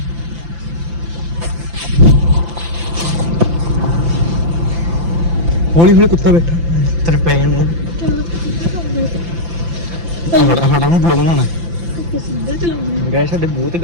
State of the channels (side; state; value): left; late; 5.9 ms